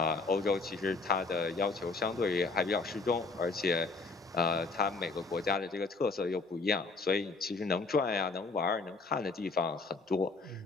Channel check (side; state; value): right; quieter; 3.9 dB